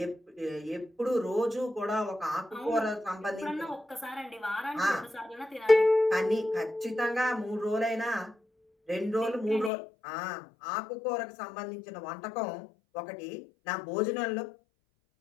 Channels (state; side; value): drops out; right; at 9.7 s